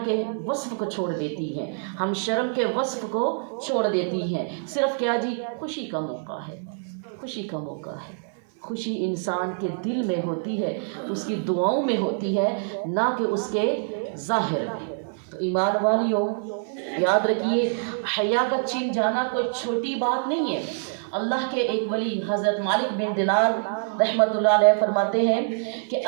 کے وصف کو چھوڑ دیتی ہیں، ہم شرم کے وصف کو چھوڑ دیتی ہیں، صرف کیا جی، خوشی کا موقع ہے، خوشی کا موقع ہے۔ خوشی انسان کے دل میں ہوتی ہے، اس کی دعاؤں میں ہوتی ہے، نہ کہ اس کے ظاہر میں۔ تو ایمان والیوں، یاد رکھیے، حیا کا چھن جانا کوئی چھوٹی بات نہیں ہے۔ اللہ کے ایک ولی حضرت مالک بن دینار رحمۃ اللہ علیہ فرماتے ہیں کہ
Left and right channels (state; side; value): silent; left; 58 dB below the other